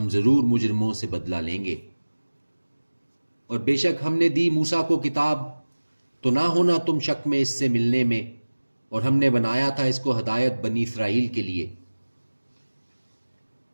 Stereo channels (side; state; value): both; inverted; correlation -1.00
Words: ضرور مجرموں سے بدلہ لیں گے۔ اور بے شک ہم نے دی موسیٰ کو کتاب، تو نہ ہونا تم شک میں اس سے ملنے میں، اور ہم نے بنایا تھا اس کو ہدایت بنی اسرائیل کے لیے،